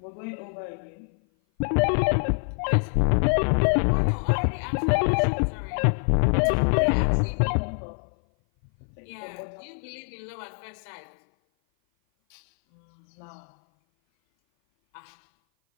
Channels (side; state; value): right; silent; 57 dB below the other